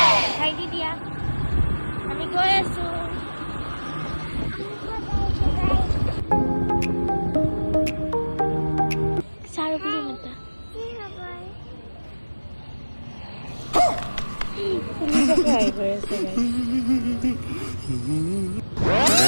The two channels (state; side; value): inverted; both; correlation -1.00